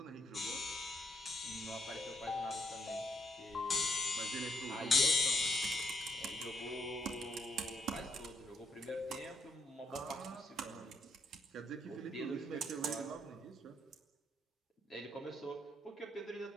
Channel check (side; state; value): both; normal; correlation 0.74